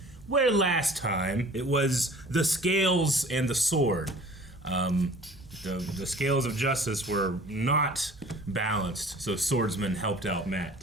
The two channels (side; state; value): both; normal; correlation 0.47